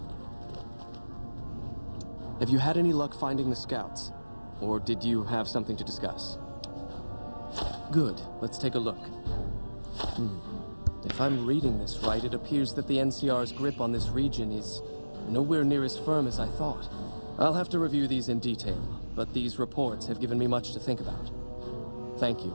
Have you had any luck finding the scouts? Or did you have something to discuss? Good. Let's take a look. If I'm reading this right, it appears that the NCR's grip on this region is nowhere near as firm as I thought. I'll have to review these in detail, but these reports have given me much to think about. Thank you,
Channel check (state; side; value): inverted; both; correlation -1.00